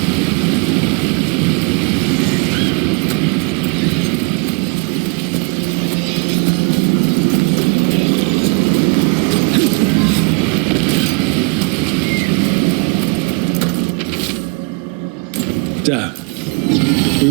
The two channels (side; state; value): left; quieter; 33.3 dB